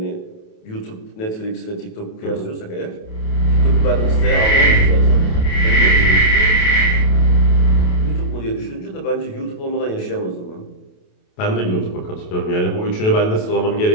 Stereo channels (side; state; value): right; late; 28 ms